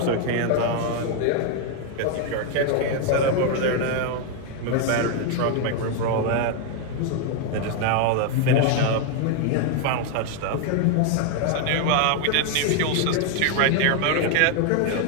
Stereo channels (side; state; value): both; different; correlation 0.00